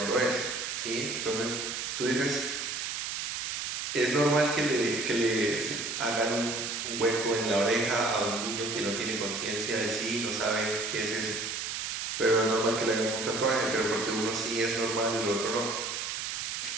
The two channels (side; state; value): right; noise; hiss, 3 dB below the sound